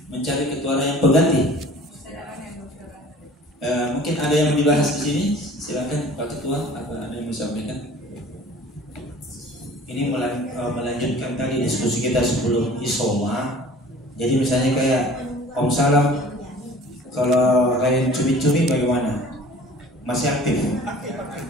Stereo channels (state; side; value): normal; both; correlation 0.47